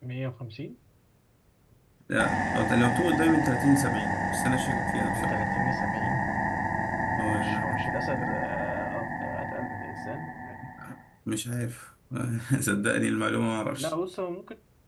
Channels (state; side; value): identical; both; correlation 1.00